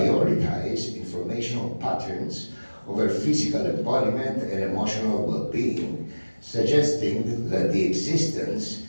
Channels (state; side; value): inverted; both; correlation -1.00